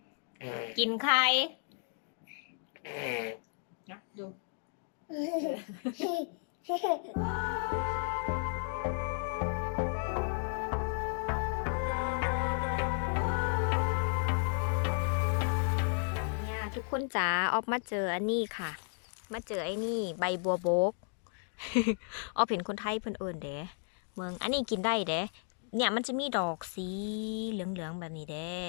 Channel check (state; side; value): silent; right; 55 dB below the other